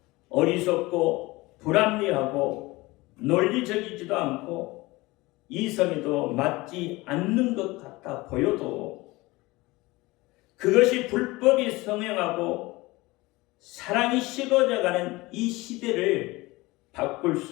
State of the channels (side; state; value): right; quieter; 21.6 dB